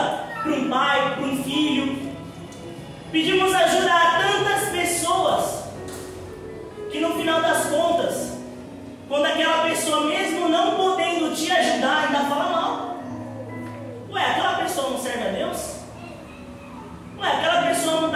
para um pai, para um filho, pedimos ajuda a tantas pessoas, que no final das contas, quando aquela pessoa, mesmo não podendo te ajudar, ainda fala mal. Ué, aquela pessoa não serve a Deus? Ué, aquela pessoa não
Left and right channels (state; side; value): identical; both; correlation 1.00